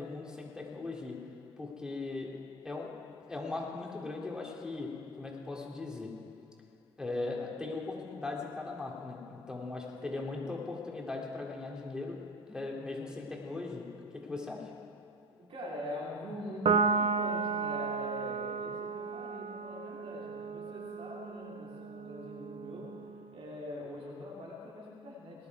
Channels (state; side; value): normal; both; correlation 0.27